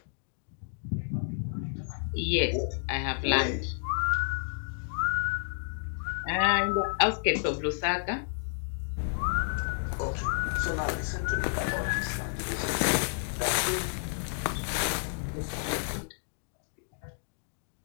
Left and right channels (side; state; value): right; silent; digital silence